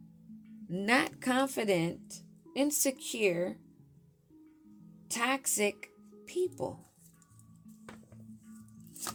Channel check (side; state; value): both; identical; correlation 1.00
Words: not confident, insecure, toxic people.